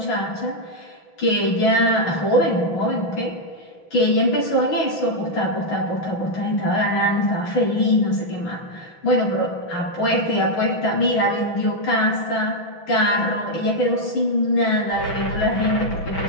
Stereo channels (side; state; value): right; late; 6.1 ms